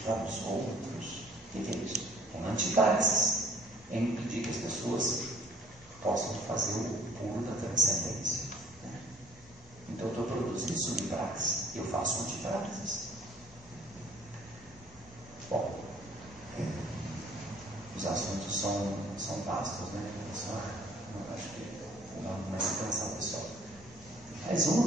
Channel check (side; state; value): both; normal; correlation 0.56